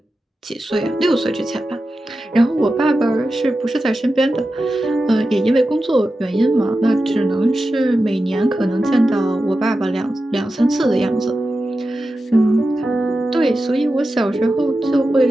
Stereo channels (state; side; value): normal; both; correlation 0.92